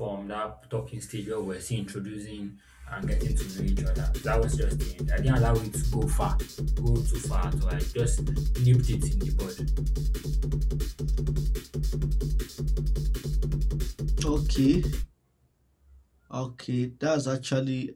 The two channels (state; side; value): identical; both; correlation 1.00